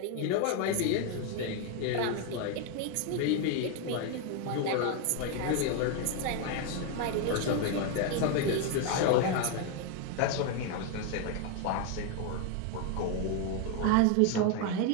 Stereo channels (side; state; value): both; different; correlation 0.01